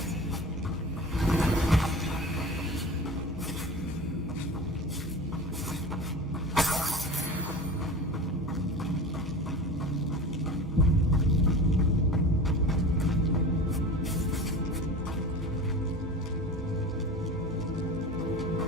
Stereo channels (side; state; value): both; normal; correlation 0.33